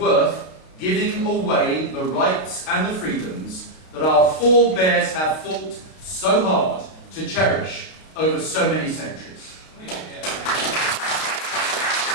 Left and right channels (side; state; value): right; late; 32 ms